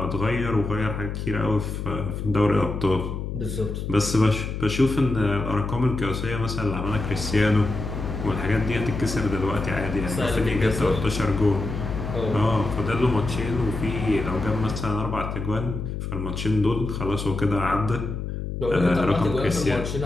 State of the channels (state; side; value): noise; left; hum, 5 dB below the sound